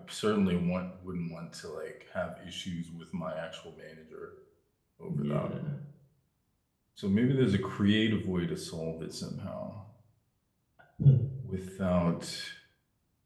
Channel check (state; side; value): identical; both; correlation 1.00